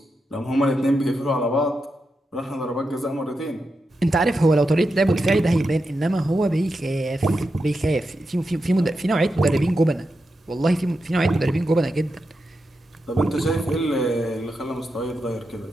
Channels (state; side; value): normal; both; correlation 0.88